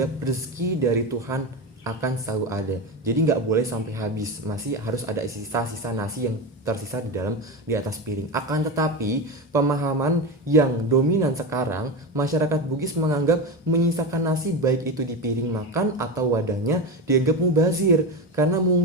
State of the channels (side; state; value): both; normal; correlation 0.19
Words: rezeki dari Tuhan akan selalu ada. Jadi nggak boleh sampai habis, masih harus ada sisa-sisa nasi yang tersisa di atas piring. Akan tetapi, pemahaman yang dominan sekarang, masyarakat Bugis menganggap menyisakan nasi baik itu di piring makan atau wadahnya dianggap mubazir, karena